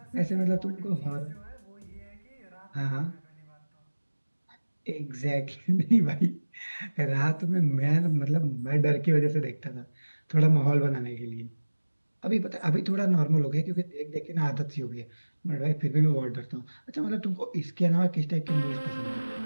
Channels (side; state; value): both; inverted; correlation -1.00